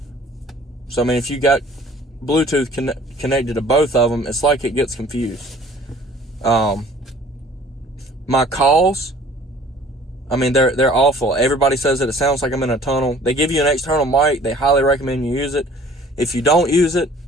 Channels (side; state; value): both; normal; correlation 0.51